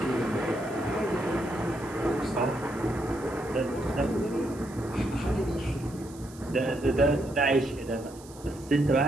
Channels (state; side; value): noise; right; hiss, 21 dB below the sound